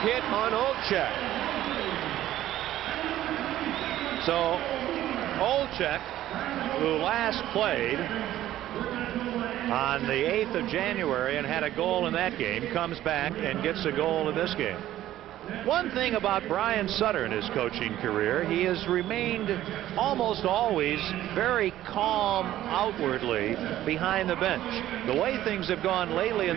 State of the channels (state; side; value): quieter; left; 13.5 dB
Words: hit on Olczyk. So Olczyk, who last played on the 8th of January and had a goal in that game, comes back and gets a goal in this game. One thing about Brian Sutter in his coaching career, he has remained almost always very calm outwardly behind the bench. The way things have gone lately in